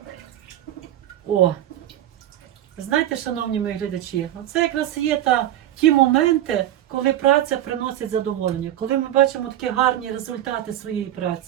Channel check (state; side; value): quieter; left; 12.5 dB